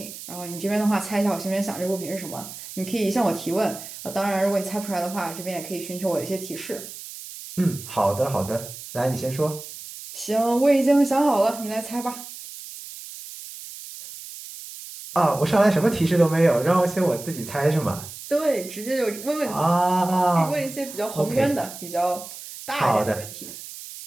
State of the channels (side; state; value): right; noise; hiss, 13 dB below the sound